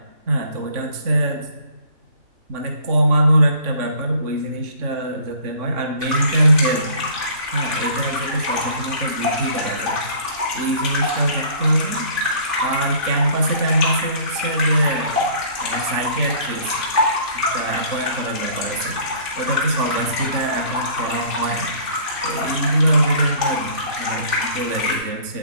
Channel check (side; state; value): left; late; 3.5 ms